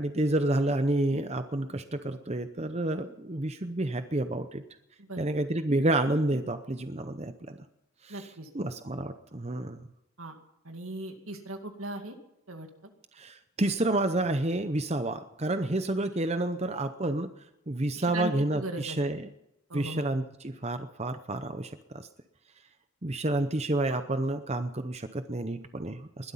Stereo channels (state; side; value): normal; both; correlation 0.61